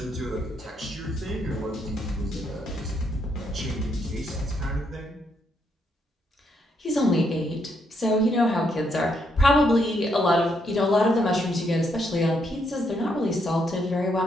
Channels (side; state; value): both; normal; correlation 0.76